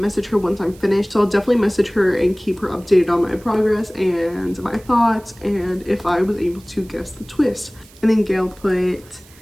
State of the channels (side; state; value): right; noise; hiss, 25 dB below the sound